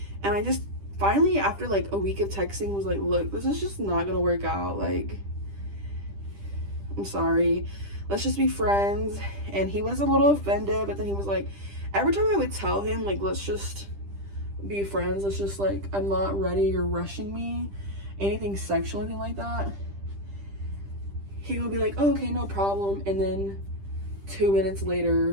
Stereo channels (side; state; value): left; late; 10 ms